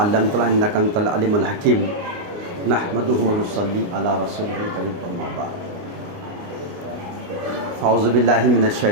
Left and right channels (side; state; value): left; late; 29 ms